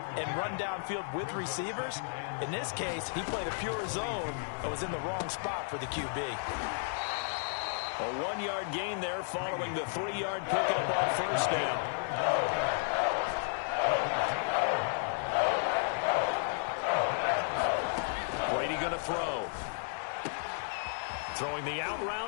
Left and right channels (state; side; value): silent; right; 56 dB below the other